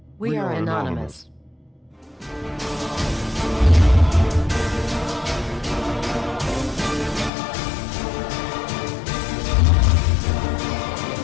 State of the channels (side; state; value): right; drops out; at 7.3 s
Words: We are anonymous.